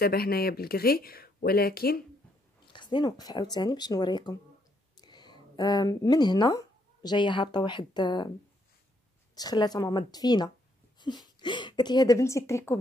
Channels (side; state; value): both; normal; correlation 0.73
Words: هنايا بالغري، ولكن خصني نوقف عاوتاني باش نوريكم. من هنا جايه هابطه واحد شخلاته ماما الدفينه. قالت لي هذا بنتي التريكو